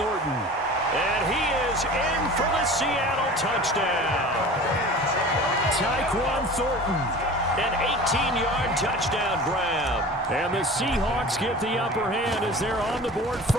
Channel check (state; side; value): normal; both; correlation 0.39